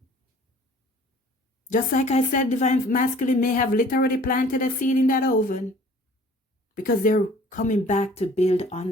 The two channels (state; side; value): normal; both; correlation 0.51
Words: Just like I said, divine masculine may have literally planted a seed in that oven. Because they're coming back to build